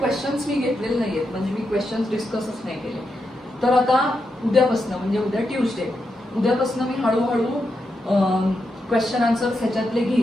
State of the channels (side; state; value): both; normal; correlation 0.85